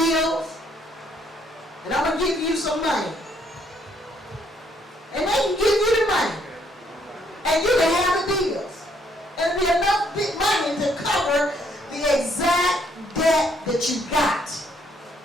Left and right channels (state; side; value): normal; both; correlation 0.69